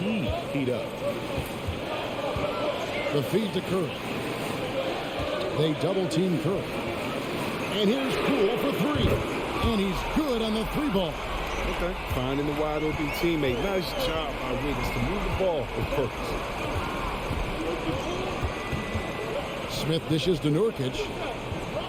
heat up? The feed to Curry. They double-team Curry. And here's Poole for 3. And he's good on the 3 ball. Okay. Finding the wide open teammate. Nice job by Wiggins to move the ball with purpose. Smith dishes to Nurkic.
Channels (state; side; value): identical; both; correlation 1.00